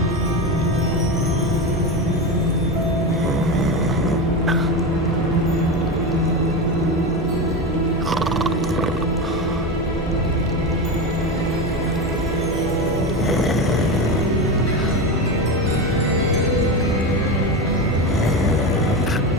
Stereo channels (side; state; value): both; normal; correlation 0.19